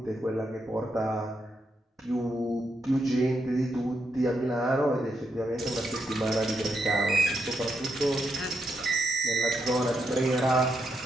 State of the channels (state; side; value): normal; both; correlation 0.81